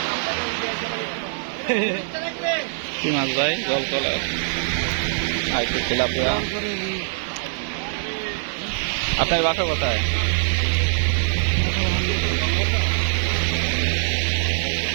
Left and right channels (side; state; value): left; silent; 61 dB below the other